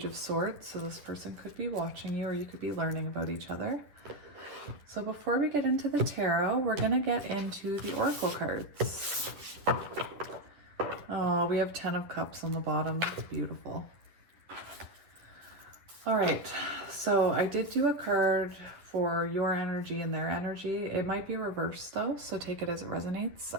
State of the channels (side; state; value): left; late; 10 ms